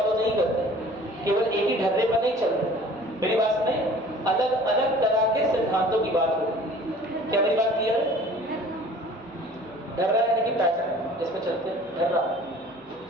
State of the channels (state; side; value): noise; left; hum, 30 dB below the sound